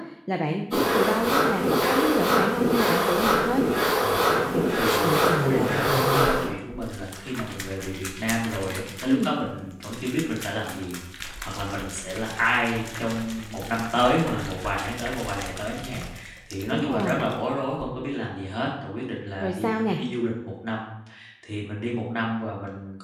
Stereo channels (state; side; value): identical; both; correlation 1.00